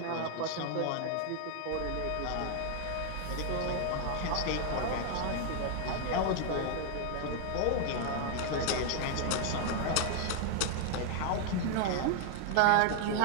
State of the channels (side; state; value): both; different; correlation 0.00